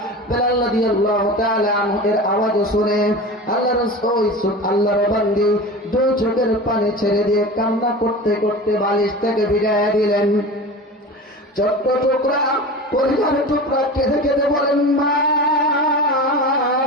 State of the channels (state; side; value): normal; both; correlation 0.31